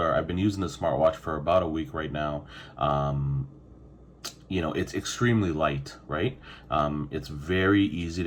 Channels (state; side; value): identical; both; correlation 1.00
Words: I've been using the smartwatch for about a week right now. It's extremely light, right? It's very easy